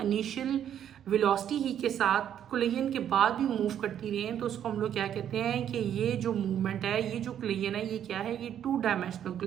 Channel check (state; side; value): quieter; left; 9.8 dB